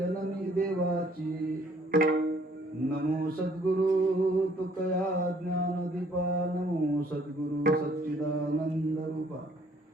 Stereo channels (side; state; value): both; normal; correlation 0.62